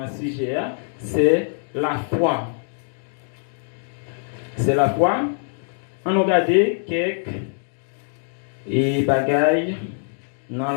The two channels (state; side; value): silent; right; digital silence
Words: ce sujet, c'est la foi. C'est la foi. On a regardé quelques bagailles dans